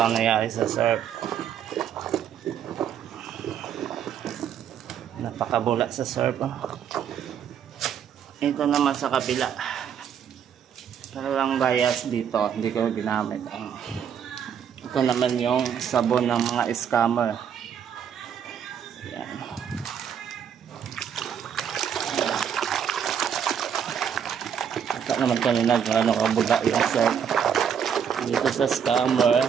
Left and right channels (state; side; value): quieter; left; 8.2 dB